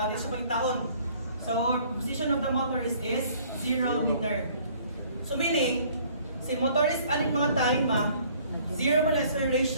pangitaon. So, position of the motorist is 0 meter. So, meaning, si motorist, aling mga time 0 man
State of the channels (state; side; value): inverted; both; correlation -0.57